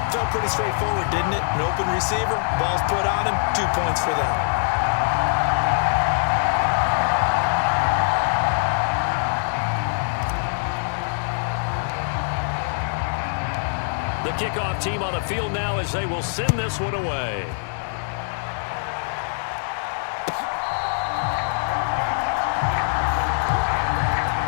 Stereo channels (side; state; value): right; silent; digital silence